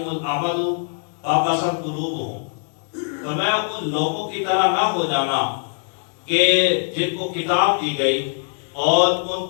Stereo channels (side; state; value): right; silent; 58 dB below the other